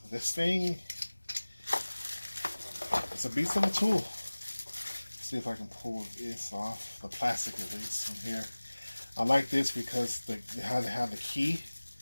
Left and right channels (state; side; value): inverted; both; correlation -1.00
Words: this thing, it's a beast of a tool. Let's see if I can pull this off, the plastic at least from here. I like this because how they have the key.